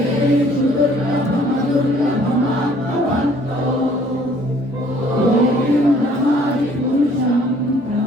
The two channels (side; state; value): both; normal; correlation 0.58